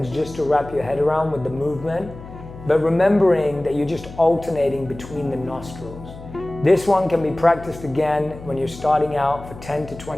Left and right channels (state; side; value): noise; left; hum, 15 dB below the sound